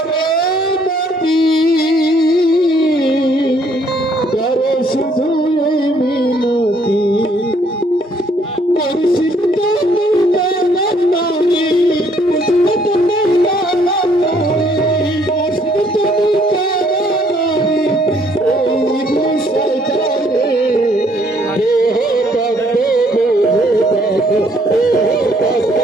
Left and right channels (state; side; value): normal; both; correlation 0.65